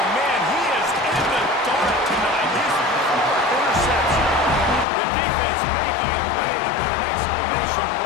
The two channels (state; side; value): drops out; right; at 4.9 s